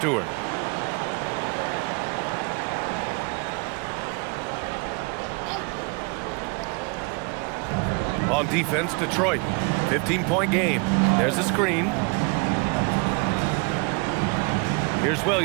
On defense, Detroit. 15-point game. There's a screen. Here's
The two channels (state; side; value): quieter; left; 31.0 dB